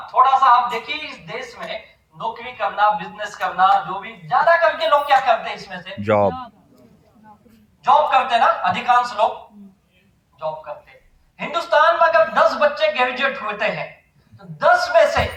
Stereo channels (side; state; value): both; identical; correlation 1.00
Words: थोड़ा सा आप देखिए इस देश में नौकरी करना, बिजनेस करना, जो भी ज्यादा करके लोग क्या करते हैं इसमें से? जॉब। जॉब करते हैं ना, अधिकांश लोग जॉब करते हैं। हिंदुस्तान में अगर 10 बच्चे ग्रेजुएट होते हैं तो 10 में से